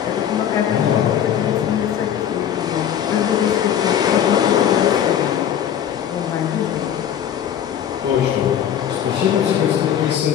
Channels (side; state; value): right; quieter; 9.7 dB